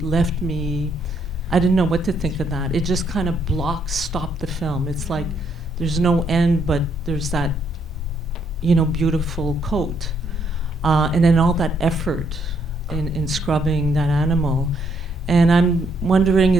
left me, I didn't know what to think of that. It just kind of stopped the film. It's like there's no end, but there's that, beautiful coat. And then all that effort in scrubbing that animal. And I'm wondering,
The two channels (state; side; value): normal; both; correlation 0.72